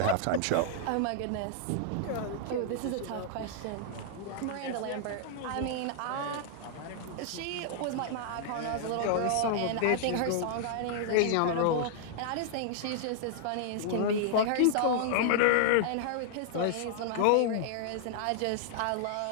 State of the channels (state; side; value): different; both; correlation -0.01